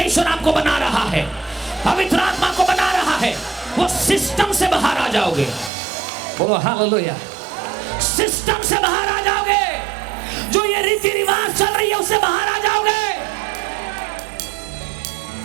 आपको बना रहा है, पवित्र आत्मा को बना रहा है। वो सिस्टम से बाहर आ जाओगे, बोलो हालेलुया। सिस्टम से बाहर आ जाओगे, जो ये रीति रिवाज चल रही है उससे बाहर आ जाओगे।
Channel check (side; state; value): left; drops out; at 5.7 s